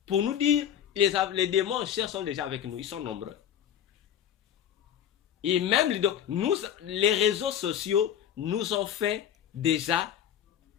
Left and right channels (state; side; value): quieter; right; 9.7 dB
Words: pour nous dire, les démons en chair sont déjà avec nous. Ils sont nombreux. Et même les réseaux sociaux nous ont fait déjà